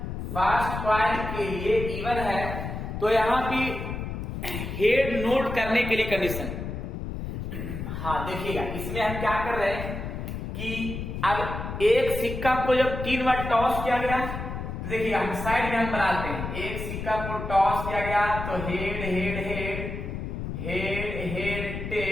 फर्स्ट कॉइन के लिए इवन है, तो यहाँ पे हेड नोट करने के लिए कंडीशन, हाँ देखिएगा इसमें हम क्या कर रहे हैं कि अब एक सिक्का को जब 3 बार टॉस किया गया, तो देखिए हम साइड में हम बनाते हैं, एक सिक्का को टॉस किया गया तो head head head head head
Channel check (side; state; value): left; noise; rumble, 6 dB below the sound